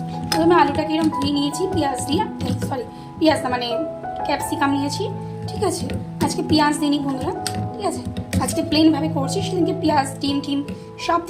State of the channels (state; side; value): identical; both; correlation 1.00